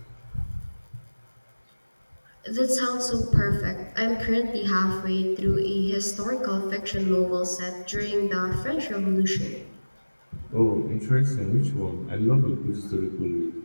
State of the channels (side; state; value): both; inverted; correlation -1.00